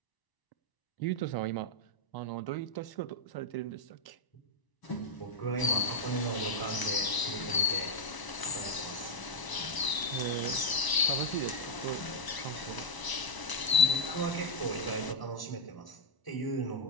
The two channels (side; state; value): right; late; 1.0 ms